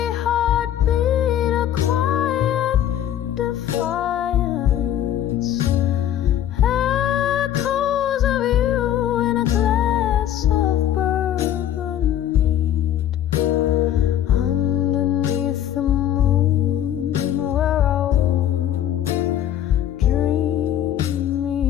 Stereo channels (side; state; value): right; quieter; 11.1 dB